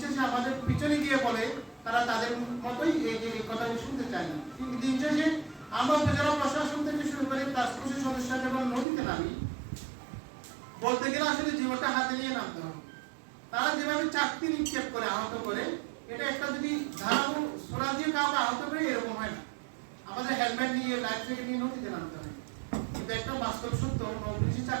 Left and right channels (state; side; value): drops out; left; at 8.8 s